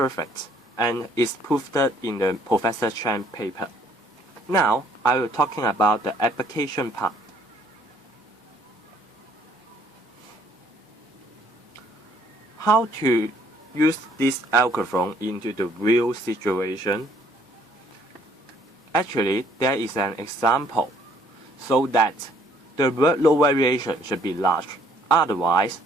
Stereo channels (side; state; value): both; normal; correlation 0.63